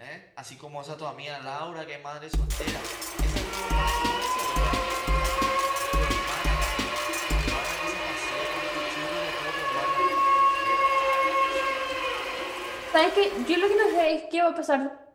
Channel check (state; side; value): identical; both; correlation 1.00